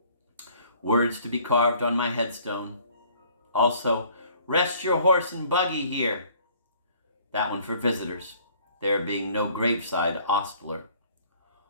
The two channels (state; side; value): inverted; both; correlation -0.56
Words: Words to be carved on my headstone. Also, rest your horse and buggy here. That one for visitors, there being no graveside ostler.